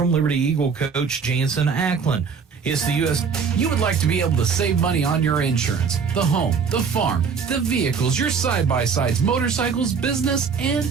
Liberty Eagle coach Jansen Ackland. It's the U.S. You would like to be able to save money on your insurance, the home, the farm, the vehicles, your side-by-sides, motorcycles, business, and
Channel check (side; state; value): left; quieter; 6.0 dB